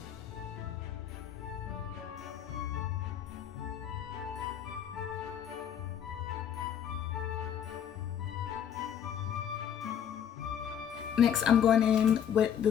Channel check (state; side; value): quieter; right; 8.9 dB